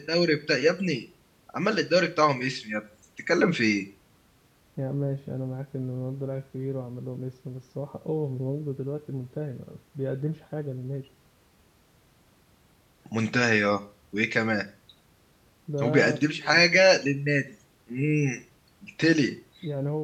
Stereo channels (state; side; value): identical; both; correlation 1.00